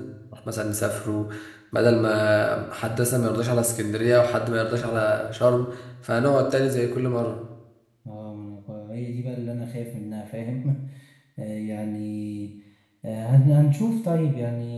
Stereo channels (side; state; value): both; identical; correlation 1.00